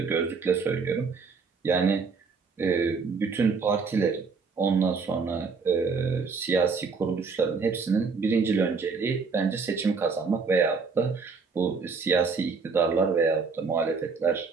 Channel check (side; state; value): left; quieter; 4.9 dB